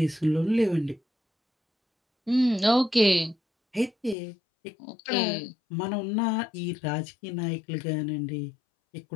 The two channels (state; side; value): drops out; right; at 4.2 s